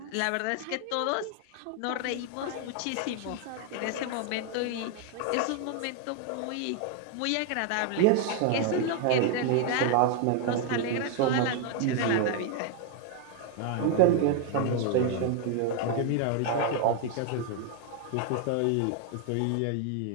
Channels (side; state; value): both; different; correlation 0.00